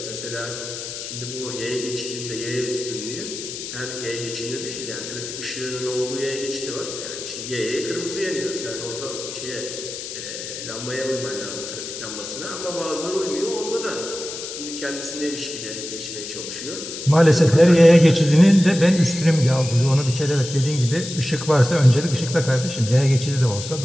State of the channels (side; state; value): left; noise; hiss, 8 dB below the sound